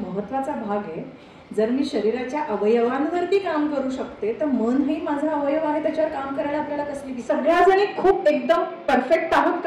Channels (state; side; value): identical; both; correlation 1.00